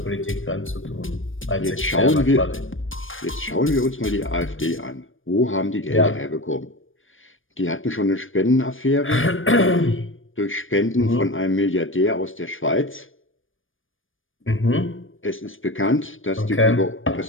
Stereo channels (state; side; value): late; right; 0.58 ms